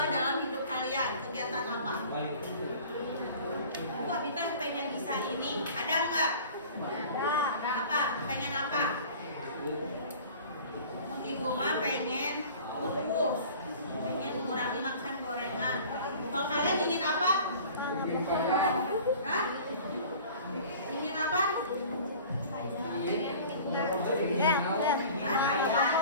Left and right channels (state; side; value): inverted; both; correlation -0.44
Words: dalam hidup kalian. Kegiatan apa? Wah, Bintang pengen bisa ini. Ada nggak? Apa? Pengen apa? Ibu mah pengen kurus, pengen mengurangi makan gorengan. Kalau kalian ingin apa? Hah? Ingin apa?